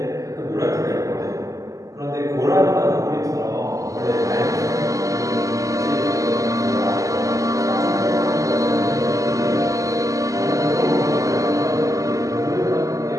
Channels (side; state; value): left; late; 0.16 ms